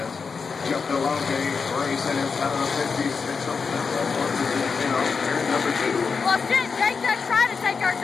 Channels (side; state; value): right; quieter; 5.3 dB